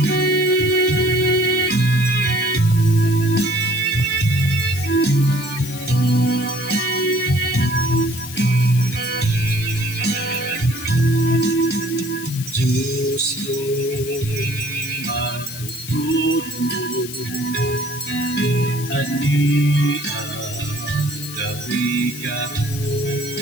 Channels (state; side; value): noise; left; hiss, 12 dB below the sound